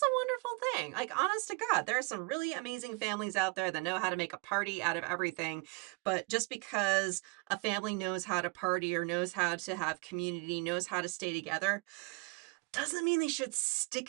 a wonderful thing. Like, honest to God, there are some really amazing families out there that know how to make a party out of everything. But just because a family knows how to party or knows how to have community, knows how to stay together, doesn't mean they should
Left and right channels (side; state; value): left; quieter; 30.3 dB